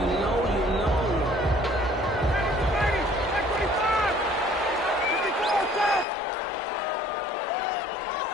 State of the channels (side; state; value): right; drops out; at 6.1 s